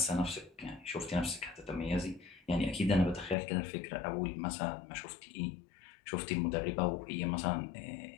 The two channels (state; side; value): drops out; right; at 3.4 s